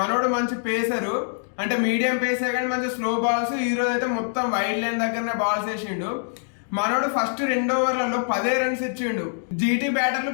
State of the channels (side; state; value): right; silent; digital silence